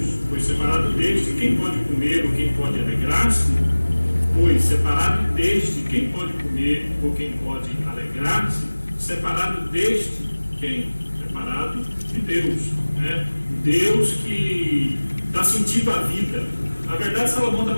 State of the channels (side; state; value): both; inverted; correlation -1.00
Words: pois separado deste, quem pode comer ou quem pode alegrar-se? Pois separado deste, quem pode comer ou quem pode alegrar-se? Separado deste, quem? Separado de Deus, né? Deus que dá sentido à vida. Na verdade, Salomão